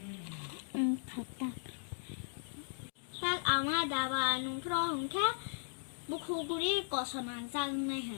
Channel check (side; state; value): right; silent; digital silence